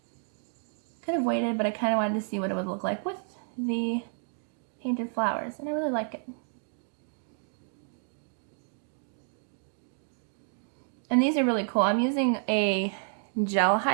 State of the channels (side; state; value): left; silent; 58 dB below the other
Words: Kind of waited, but I kind of wanted to see what it would look like with the painted flowers, and I really like it. And these are really cool. I'm using a gel